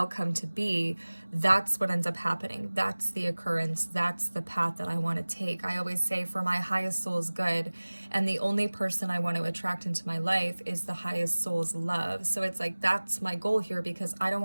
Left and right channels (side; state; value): both; inverted; correlation -1.00